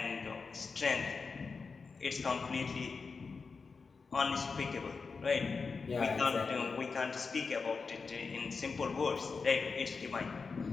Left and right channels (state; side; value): quieter; right; 4.8 dB